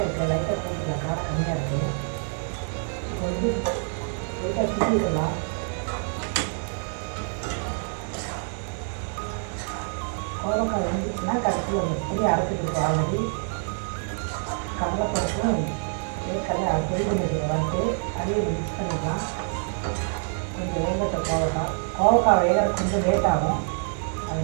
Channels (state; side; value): silent; left; 55 dB below the other